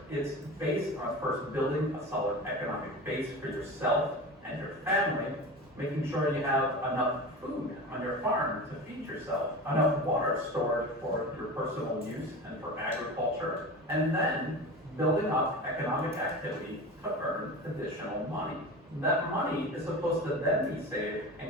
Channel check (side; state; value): both; normal; correlation 0.30